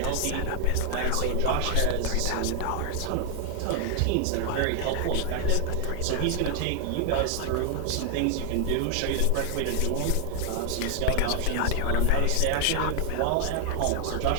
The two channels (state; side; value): different; both; correlation 0.00